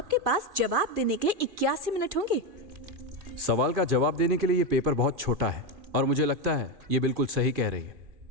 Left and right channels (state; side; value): late; left; 2.4 ms